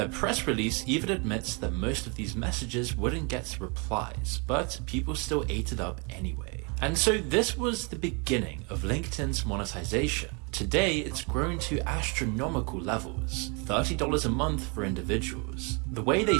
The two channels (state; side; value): quieter; left; 32.8 dB